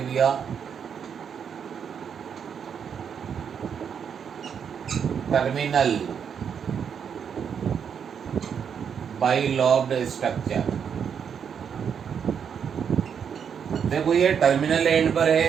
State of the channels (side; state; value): left; quieter; 7.4 dB